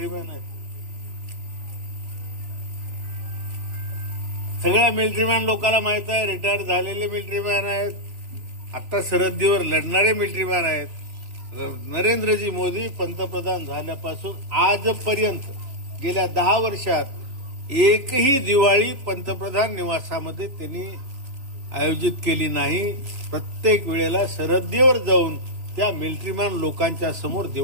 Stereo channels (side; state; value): left; late; 3.4 ms